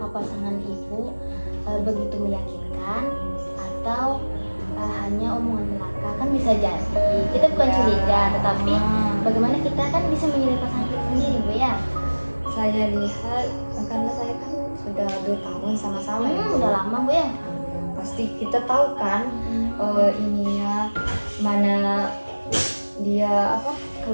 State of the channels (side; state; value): both; inverted; correlation -1.00